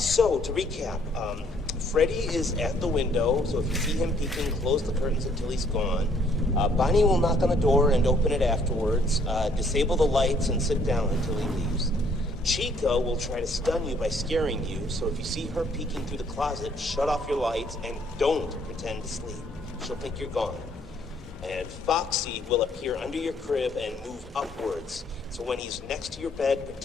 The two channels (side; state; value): both; normal; correlation 0.65